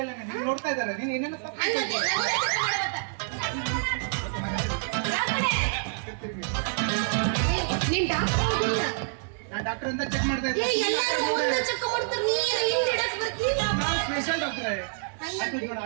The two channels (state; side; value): silent; left; digital silence